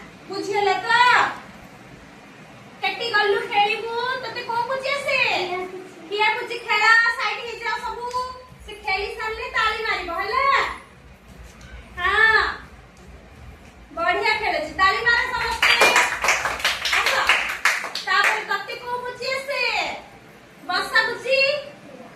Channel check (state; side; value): identical; both; correlation 1.00